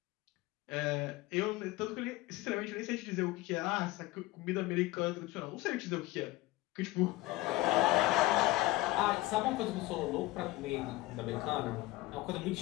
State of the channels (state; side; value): quieter; right; 18.9 dB